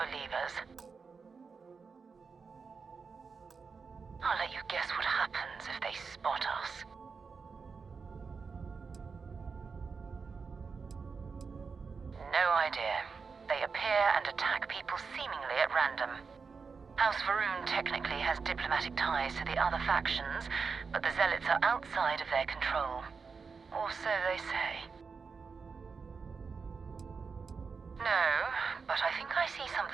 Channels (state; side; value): quieter; left; 5.2 dB